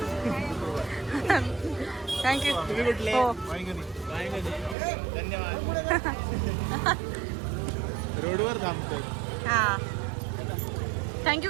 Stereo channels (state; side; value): drops out; left; at 4.8 s